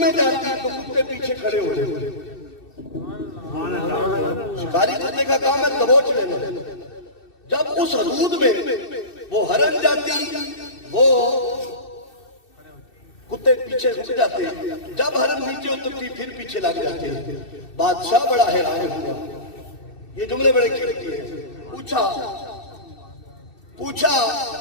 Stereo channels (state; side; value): late; right; 2.6 ms